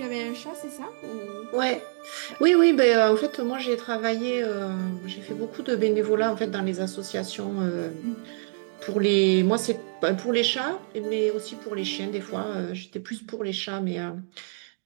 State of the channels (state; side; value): silent; left; 61 dB below the other